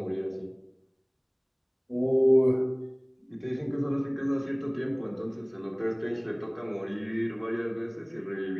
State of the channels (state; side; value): identical; both; correlation 1.00